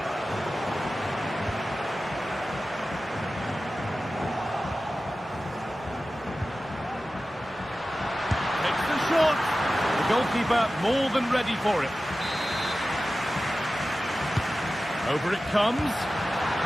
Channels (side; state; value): both; normal; correlation 0.95